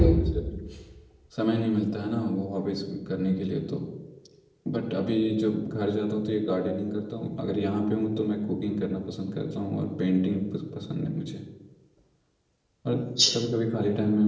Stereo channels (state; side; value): identical; both; correlation 1.00